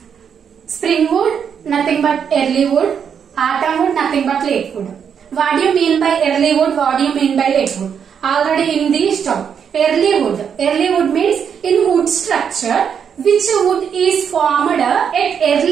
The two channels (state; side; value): quieter; left; 7.5 dB